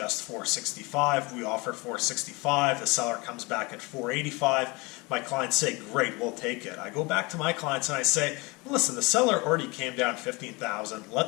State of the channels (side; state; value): right; quieter; 26.1 dB